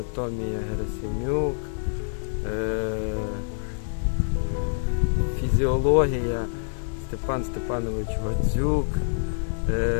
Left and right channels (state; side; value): silent; right; digital silence